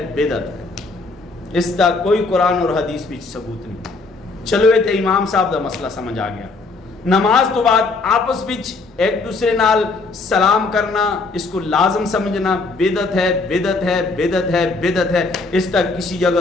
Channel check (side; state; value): right; quieter; 3.7 dB